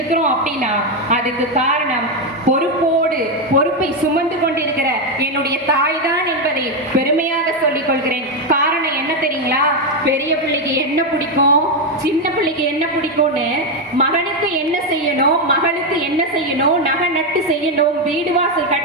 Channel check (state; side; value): normal; both; correlation 0.06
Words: அப்படின்னா அதுக்கு காரணம் பொறுப்போடு, பொறுப்பை சுமந்து கொண்டிருக்கிற என்னுடைய தாய் தான் என்பதை பெருமையாக சொல்லிக் கொள்கிறேன். காரணம் என்ன தெரியுங்களா? பெரிய பிள்ளைக்கு என்ன பிடிக்கும், சின்ன பிள்ளைக்கு என்ன பிடிக்கும்னு, மகனுக்கு என்ன செய்யணும், மகளுக்கு என்ன செய்யணும், நகை நட்டு செய்யணும், வீடு வாசல்